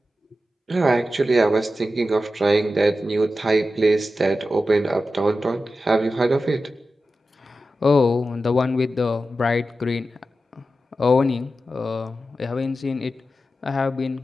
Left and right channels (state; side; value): normal; both; correlation 0.92